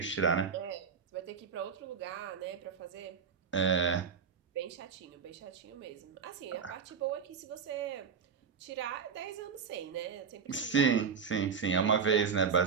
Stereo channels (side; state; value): left; quieter; 6.1 dB